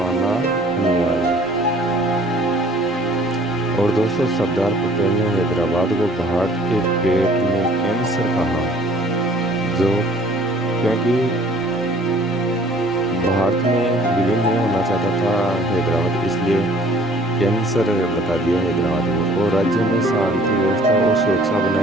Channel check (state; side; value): normal; both; correlation 0.54